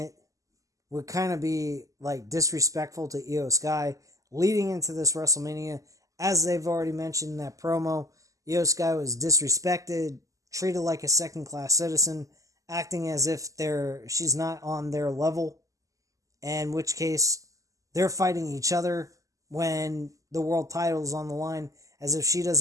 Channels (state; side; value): late; left; 0.16 ms